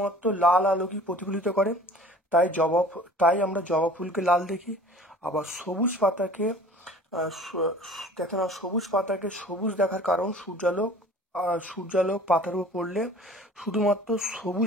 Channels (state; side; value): normal; both; correlation 0.46